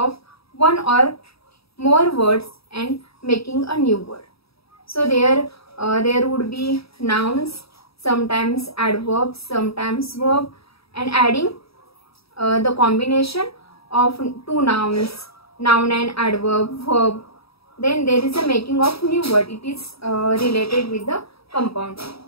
one or more words and making a new word. So there would be nouns, sometimes adverbs, sometimes verb, and adding the combination of two nouns, noun and adverb, verb. Then there is a making of new word. It is related with the compounding.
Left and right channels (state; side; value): late; right; 0.77 ms